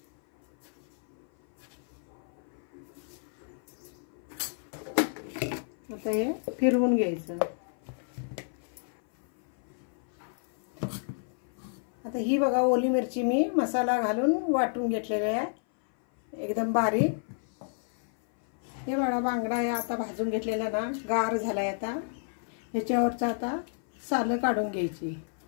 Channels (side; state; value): right; silent; 56 dB below the other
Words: आता हे फिरवून घ्यायचं। आता ही बघा ओली मिरची मी मसाला घालून वाटून घेतलेली आहे एकदम बारीक। हे बघा बांगडा आहे आता भाजून घेतलेला ना, गार झालाय। आता ह्याच्यावरचा आता सालं काढून घ्यायची,